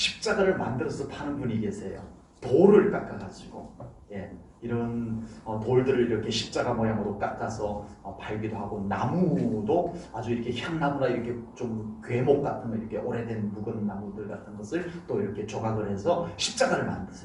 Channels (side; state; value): both; identical; correlation 1.00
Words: 만들어서 파는 분이 계세요. 돌을 깎아가지고 이런 돌들을 이렇게 십자가 모양으로 깎아서 팔기도 하고, 나무도 아주 이렇게 향나무나 이렇게 좀 괴목 같은 거, 이렇게 오래된 묵은 나무들 같은 것을 또 이렇게 조각을 해서 십자가를